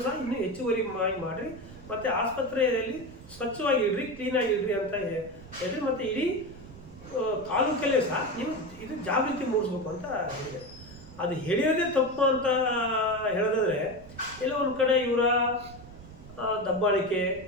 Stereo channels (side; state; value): right; noise; rumble, 18 dB below the sound